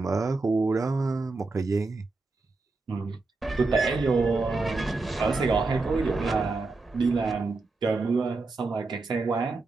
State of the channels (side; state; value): left; quieter; 3.6 dB